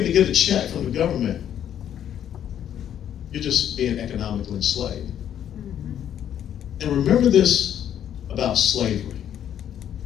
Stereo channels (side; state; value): right; quieter; 10.0 dB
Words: to get a check from the government, you're just being economically enslaved. And remember this about slavery.